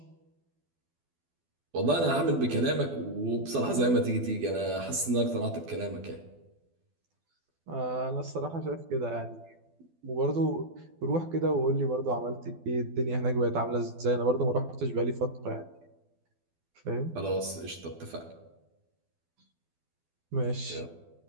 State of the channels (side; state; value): left; late; 12 ms